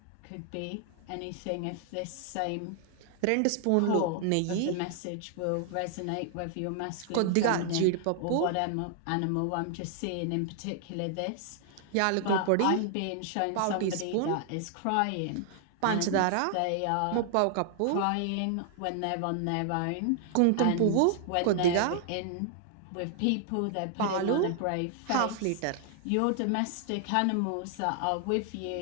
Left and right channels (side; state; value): both; different; correlation 0.00